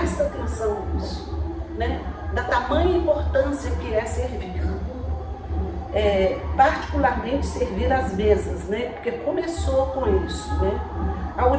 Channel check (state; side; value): identical; both; correlation 1.00